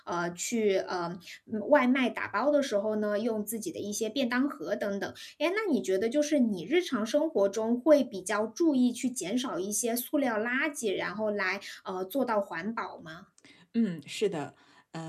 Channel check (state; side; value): identical; both; correlation 1.00